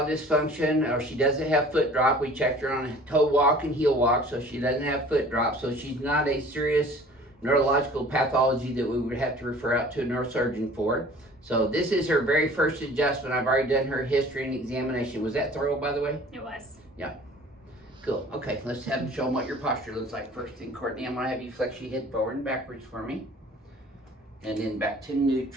dysfunction, or she doesn't have foot drop. We checked her on a toe walk and heel walk, so she doesn't have foot drop. So she's not a serious neurological pathology that we would have to refer out to a neurosurgeon for. So this is her very first adjustment. I've already done her history and examination. Was that thorough, by the way? It was. Yeah. Cool. Okay, let's have them show them what your posture looks like first thing. Courtney, I'm going to have you flex your head forward and backwards for me. And then back to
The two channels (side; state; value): both; normal; correlation 0.48